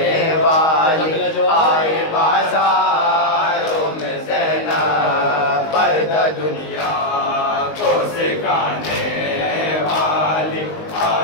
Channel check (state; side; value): late; right; 19 ms